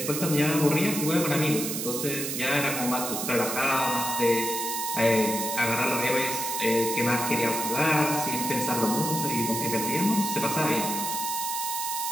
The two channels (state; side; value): noise; right; hiss, 3 dB below the sound